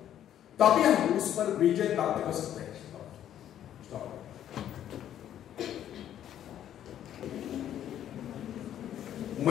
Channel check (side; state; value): right; quieter; 10.8 dB